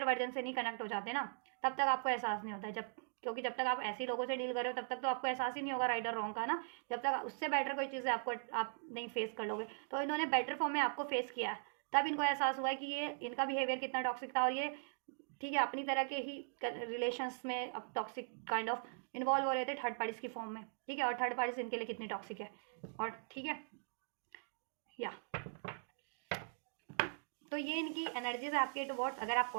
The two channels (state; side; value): silent; left; digital silence